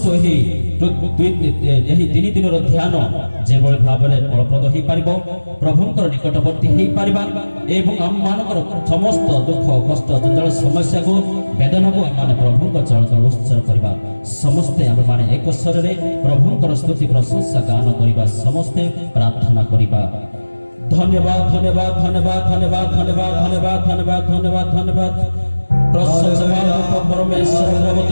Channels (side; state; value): both; inverted; correlation -1.00